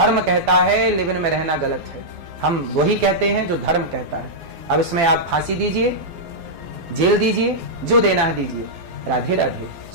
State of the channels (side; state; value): left; late; 12 ms